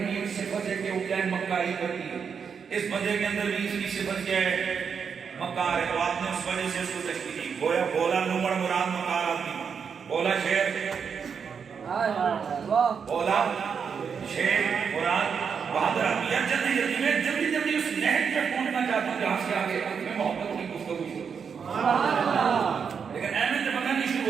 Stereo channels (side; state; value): left; quieter; 6.5 dB